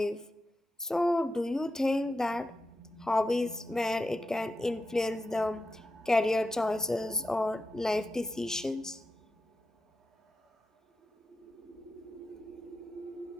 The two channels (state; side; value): normal; both; correlation 0.89